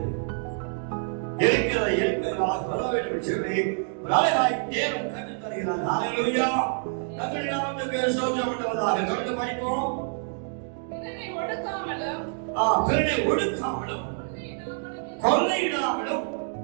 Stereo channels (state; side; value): silent; left; 60 dB below the other